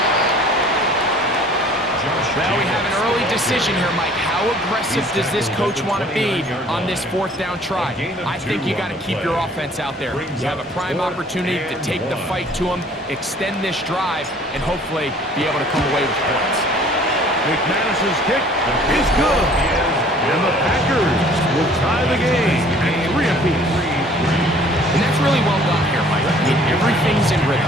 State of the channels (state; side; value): normal; both; correlation 0.53